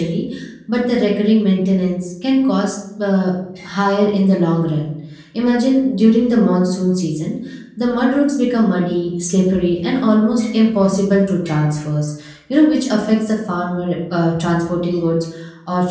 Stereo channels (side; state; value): both; identical; correlation 1.00